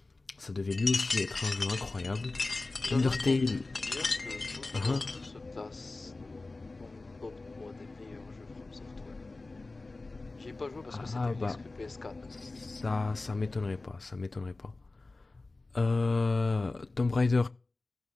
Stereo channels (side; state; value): right; quieter; 3.3 dB